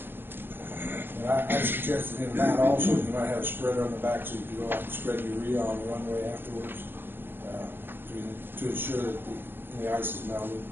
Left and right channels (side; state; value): left; late; 0.099 ms